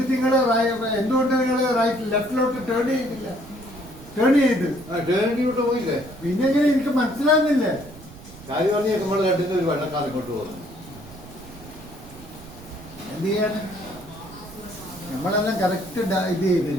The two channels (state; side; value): noise; right; rumble, 18 dB below the sound